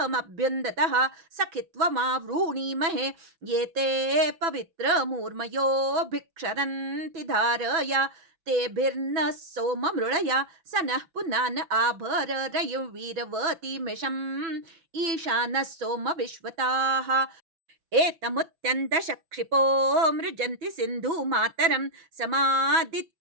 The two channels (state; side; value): late; left; 6.0 ms